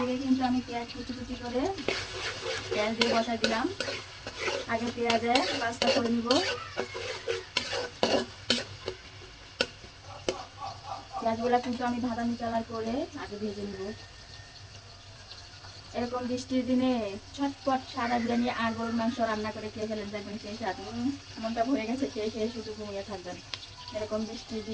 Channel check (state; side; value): identical; both; correlation 1.00